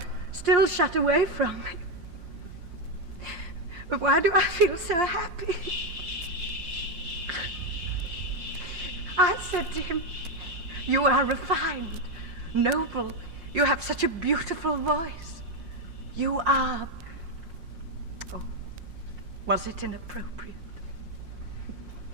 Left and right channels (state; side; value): late; left; 5.7 ms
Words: still shut away from me. But why do I feel so happy? I said to him, you are refined, noble. You have such a beautiful voice. You are... Oh, was it inappropriate?